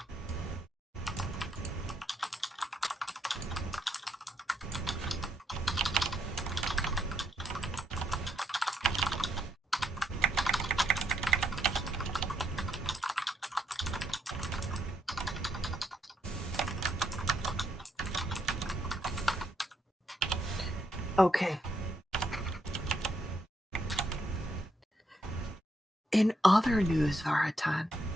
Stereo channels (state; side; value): normal; both; correlation 0.77